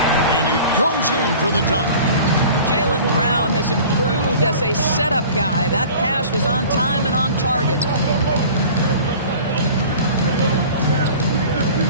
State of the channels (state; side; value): inverted; both; correlation -0.43